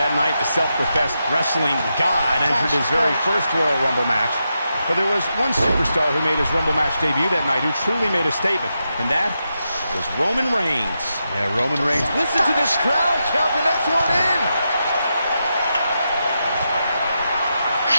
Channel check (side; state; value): both; inverted; correlation -0.86